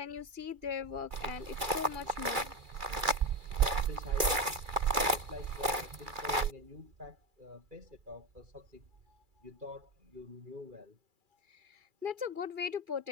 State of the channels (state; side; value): late; left; 2.3 ms